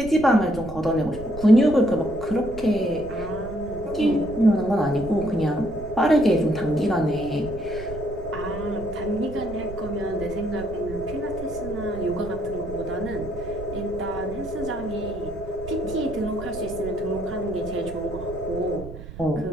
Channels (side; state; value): right; noise; rumble, 12 dB below the sound